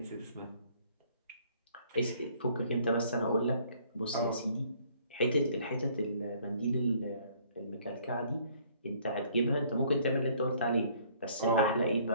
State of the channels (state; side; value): inverted; both; correlation -0.60